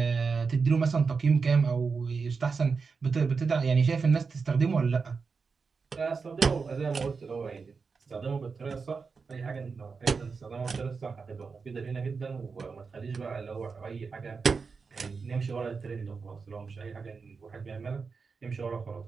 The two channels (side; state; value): left; quieter; 5.0 dB